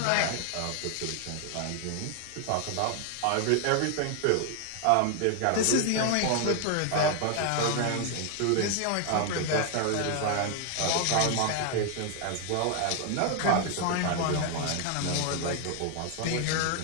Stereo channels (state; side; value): different; both; correlation 0.00